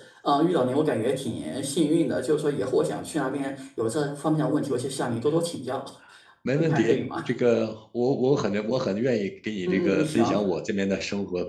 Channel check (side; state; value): both; identical; correlation 1.00